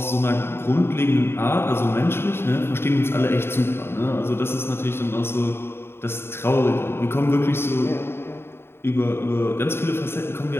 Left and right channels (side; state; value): right; late; 0.11 ms